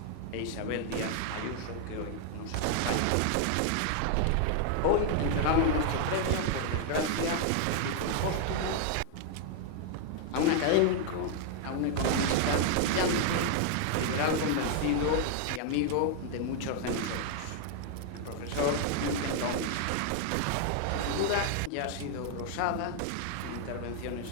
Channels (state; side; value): different; both; correlation 0.00